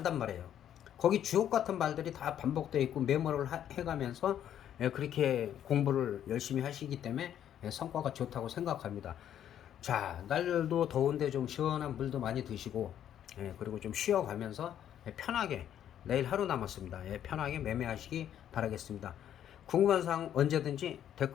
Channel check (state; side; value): quieter; right; 10.3 dB